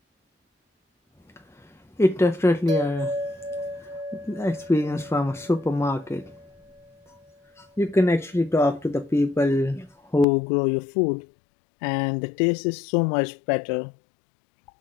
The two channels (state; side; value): drops out; right; at 10.2 s